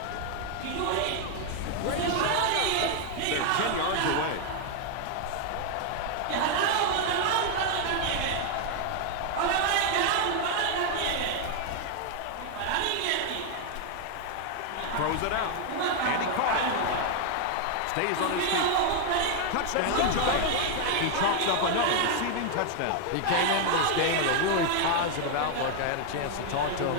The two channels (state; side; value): different; both; correlation 0.00